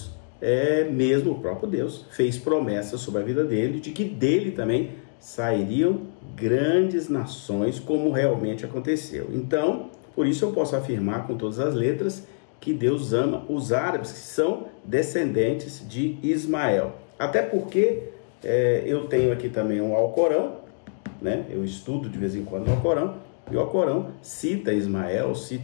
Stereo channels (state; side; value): silent; right; digital silence